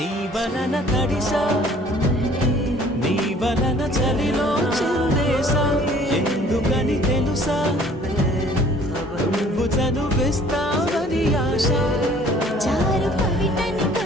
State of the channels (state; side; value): normal; both; correlation 0.54